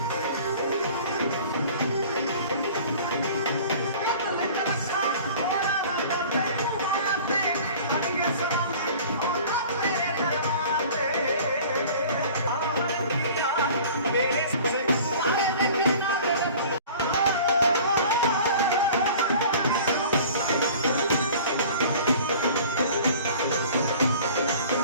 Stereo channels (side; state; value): both; inverted; correlation -0.45